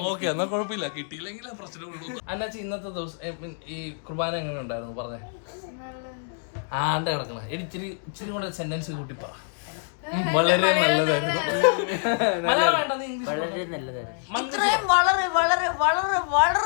ഓക്കെ, എന്നാ കുഴപ്പമില്ല. കിട്ടിയില്ലെങ്കിലേ പ്രശ്നമുള്ളൂ. അന്നാച്ചി ഇന്നത്തെ ദിവസം ഈ കുർബാന എങ്ങനെ ഉണ്ടായിരുന്നു പറഞ്ഞേ? ആണ്ട കിടക്കണം. ഇച്ചിരി കൂടെ സെന്റൻസ് കൂട്ടി പറ. വളരെ നല്ലതായിരുന്നു. മലയാളം വേണ്ട, നീ ഇംഗ്ലീഷ്.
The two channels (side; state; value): right; silent; digital silence